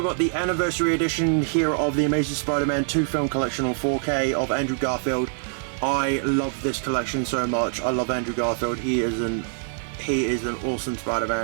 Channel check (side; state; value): left; silent; digital silence